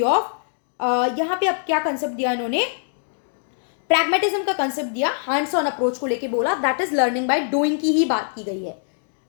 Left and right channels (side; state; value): right; silent; digital silence